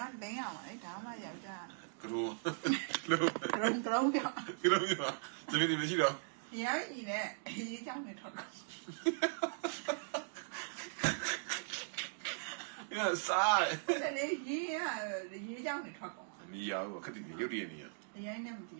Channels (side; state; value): left; silent; digital silence